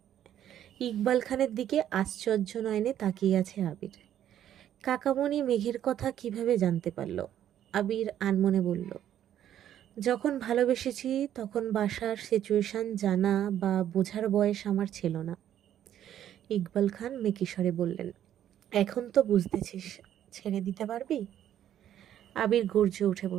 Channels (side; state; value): left; quieter; 10.9 dB